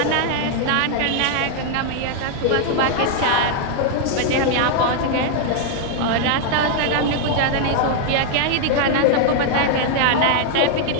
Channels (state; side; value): different; both; correlation 0.00